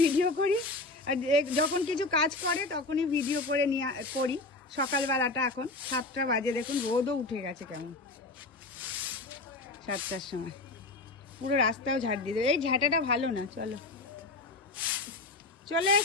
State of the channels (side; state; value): right; quieter; 3.2 dB